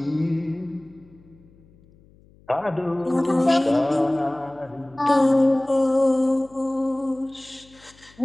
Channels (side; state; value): left; noise; hum, 28 dB below the sound